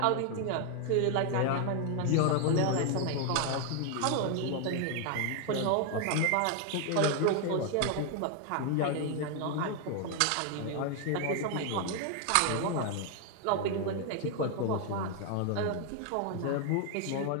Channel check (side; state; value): both; different; correlation 0.00